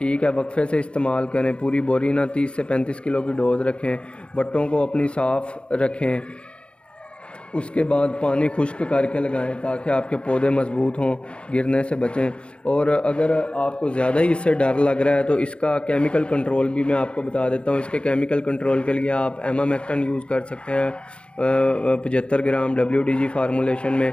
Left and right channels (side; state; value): right; late; 0.057 ms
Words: है, वक्फे से इस्तेमाल करें, पूरी बोरी ना 30 से 35 किलो की डोज़ रखें, बट्टों को अपनी साफ़ रखें, उसके बाद पानी खुश्क करके लगाएं ताकि आपके पौधे मज़बूत हों, गिरने से बचें। और अगर आपको ज़्यादा ही इससे डर लग रहा है तो इसका केमिकल कंट्रोल भी मैं आपको बता देता हूँ। इसके केमिकल कंट्रोल के लिए आप एमामेक्टन यूज़ कर सकते हैं 75 ग्राम WDG फार्मूलेशन में,